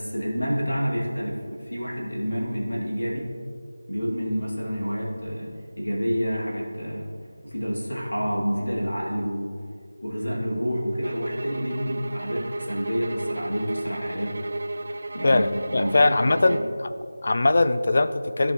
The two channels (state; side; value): inverted; both; correlation -0.97